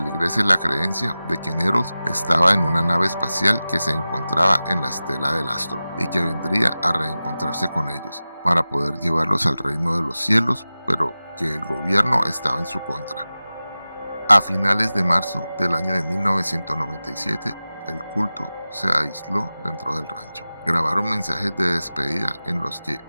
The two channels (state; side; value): inverted; both; correlation -0.96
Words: la creencia de que Nettles estaba en una nave espacial que se encontraba en la estela del astro y que vendría a reencontrarse con ellos para poder llevarlos al reino de los cielos, pero que el gobierno estaba en su contra. A finales de marzo del año de 1997, el culto se aisló dentro del rancho. Grabaron mensajes de despedida en los que